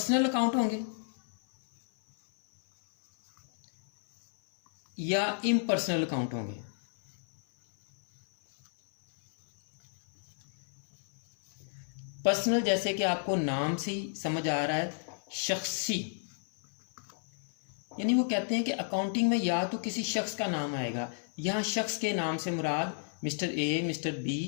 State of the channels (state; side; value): silent; right; 57 dB below the other